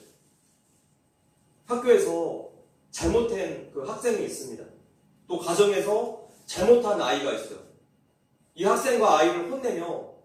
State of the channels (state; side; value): identical; both; correlation 1.00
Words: 학교에서 잘못한 그 학생이 있습니다. 또 가정에서 잘못한 아이가 있어요. 이 학생과 아이를 혼내며